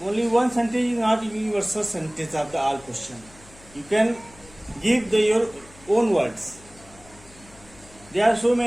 only one sentence is not universal sentence of the all question. You can give your own words. There are so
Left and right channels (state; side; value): noise; left; hum, 24 dB below the sound